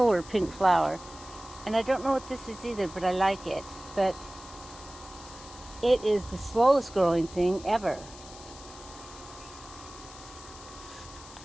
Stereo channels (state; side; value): noise; left; hiss, 17 dB below the sound